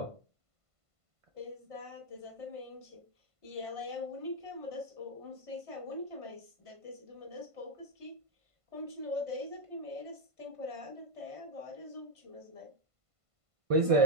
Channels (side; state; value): left; late; 1.5 ms